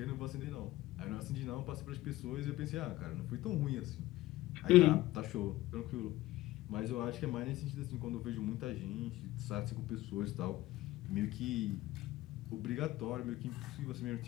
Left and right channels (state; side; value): quieter; right; 17.1 dB